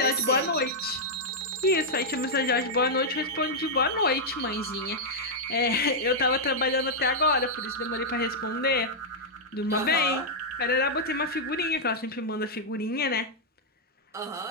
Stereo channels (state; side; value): normal; both; correlation -0.05